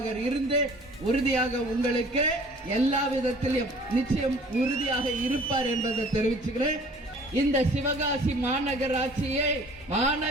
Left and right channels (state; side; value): normal; both; correlation 0.51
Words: இருந்து உறுதியாக உங்களுக்கு எல்லா விதத்திலும் நிச்சயம் உறுதியாக இருப்பார் என்பதை தெரிவிச்சுக்கிறேன். இந்த சிவகாசி மாநகராட்சியை